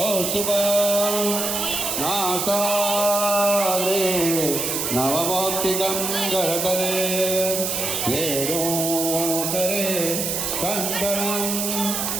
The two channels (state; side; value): noise; right; hiss, 1 dB below the sound